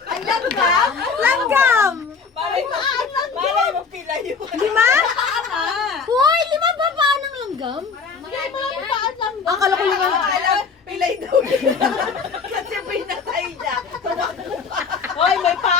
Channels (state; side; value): quieter; right; 5.3 dB